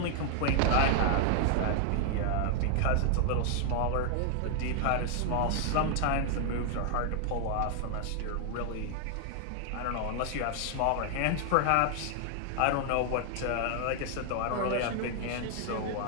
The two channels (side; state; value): both; different; correlation 0.00